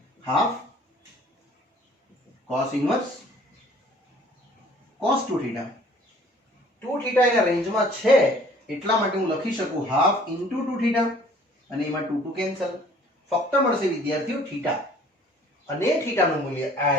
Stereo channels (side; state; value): both; normal; correlation 0.54